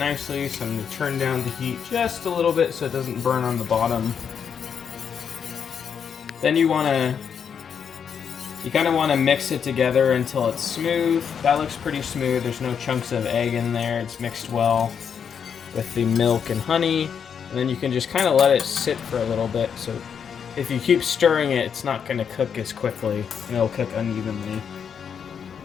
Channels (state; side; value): quieter; right; 7.3 dB